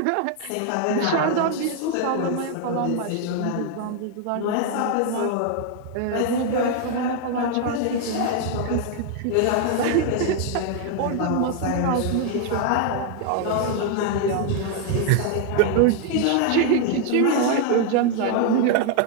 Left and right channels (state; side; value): different; both; correlation 0.00